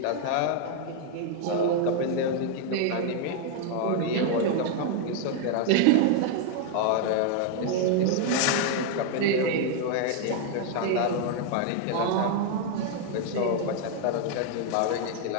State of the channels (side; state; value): both; different; correlation 0.00